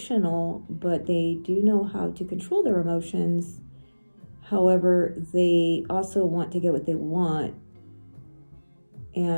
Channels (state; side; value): inverted; both; correlation -1.00